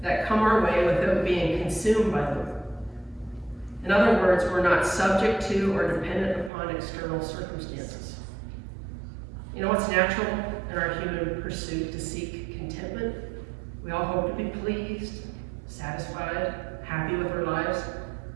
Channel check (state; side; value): drops out; left; at 6.5 s